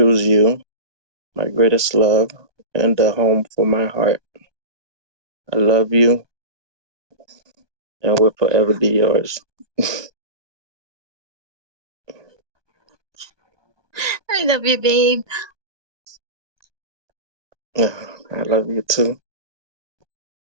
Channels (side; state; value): left; late; 1.2 ms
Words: you, my greatest love, and the home for my heart. I love you and will forever be yours. I love you, babe. I love you too.